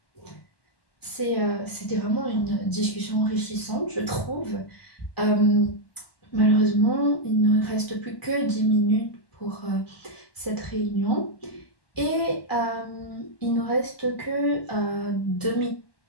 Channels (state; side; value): late; right; 1.1 ms